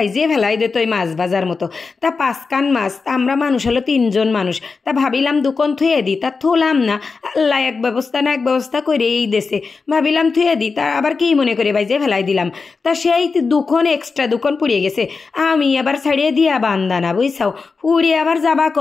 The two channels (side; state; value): right; quieter; 4.6 dB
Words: ফেলাই দিত ওই মাছ ভাজার মতো? তা 5 কান মাছ, তা আমরা মানুষ হলো 3জন মানুষ, তা ভাবিলাম দুকন থুয়ে দিই, তা থুলাম না। আল্লাহ এক ব্যবস্থা না এক ব্যবস্থা করে এই দেশে, ভাবিলাম থুয়ে দিই, তা আবার কি মনে করে বাইজিয়ে ফেলাই দিলাম। তা সেই দুখন এক্সট্রা দুখন পুড়িয়ে গেছে, আমি আবার ছাড়িয়ে দিয়া বান্দানা, বুঝছাও, পুড়িয়ে আবার যাবা